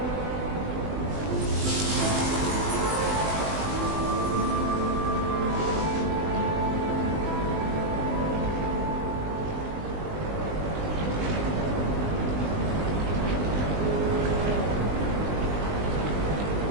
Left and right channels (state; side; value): late; left; 20 ms